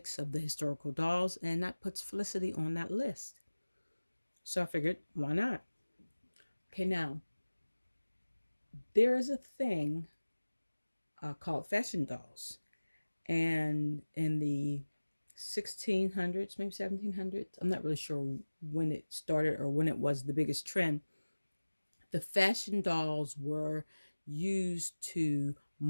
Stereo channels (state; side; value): inverted; both; correlation -1.00